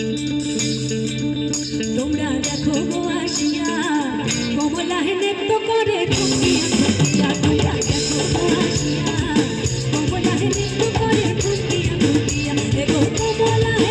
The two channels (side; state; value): both; identical; correlation 1.00